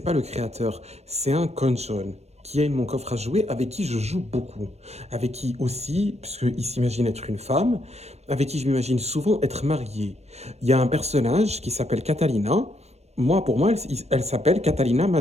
le créateur. C'est un cône jaune qui est mon coffre à jouer, avec qui je joue beaucoup. Avec qui aussi, puisqu'il s'imagine être une femme, avec qui je m'imagine souvent être marié. Il y a un personnage qui s'appelle Catalina. Moi, pour moi, elle s'appelle Catalina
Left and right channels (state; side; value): late; left; 0.31 ms